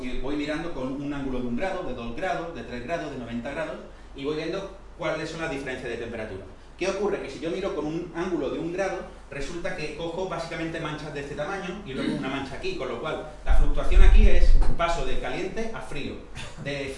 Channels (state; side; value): identical; both; correlation 1.00